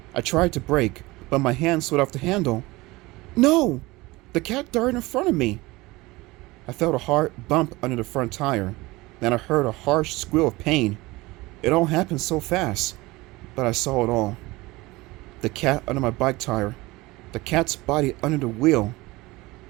I tried to brake, but my hand slid off the handle. No! The cat darted in front of me. I felt a hard bump under the front tire. Then I heard a harsh squeal of pain. It all happened so fast, but I saw it all. The cat under my bike tire. The cat's body under the wheel.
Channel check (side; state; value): left; quieter; 21.2 dB